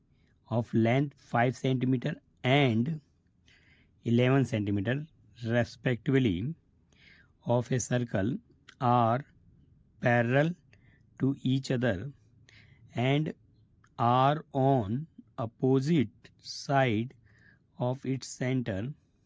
of length 5 centimeter and 11 centimeter respectively of a circle are parallel to each other and are on opposite side of its center.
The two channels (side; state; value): both; identical; correlation 1.00